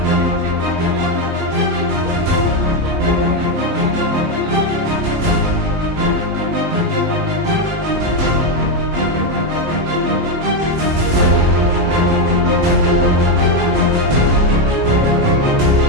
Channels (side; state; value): left; late; 19 ms